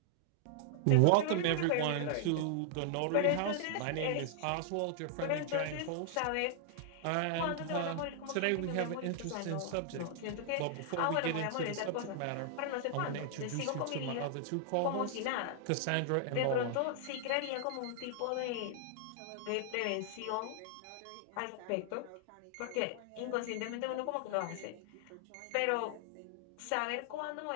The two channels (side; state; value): both; different; correlation -0.01